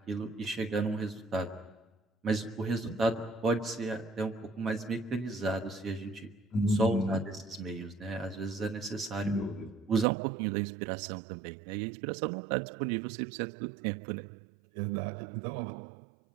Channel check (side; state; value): left; drops out; at 10.1 s